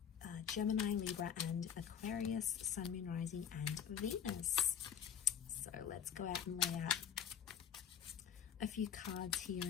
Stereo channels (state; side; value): quieter; right; 8.4 dB